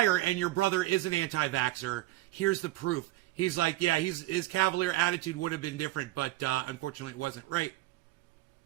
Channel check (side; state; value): left; quieter; 17.3 dB